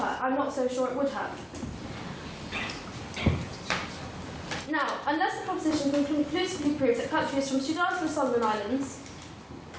I'm not so sure it would have. Now, unless the proposition can conclusively prove that countries from Sudan to the Solomon Islands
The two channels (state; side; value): identical; both; correlation 1.00